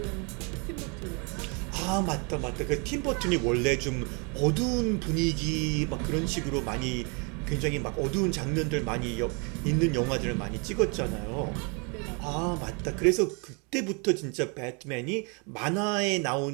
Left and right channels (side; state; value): left; quieter; 34.0 dB